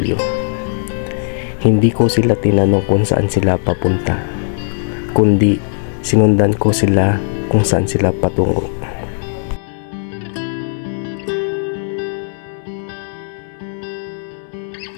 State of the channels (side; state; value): right; silent; 68 dB below the other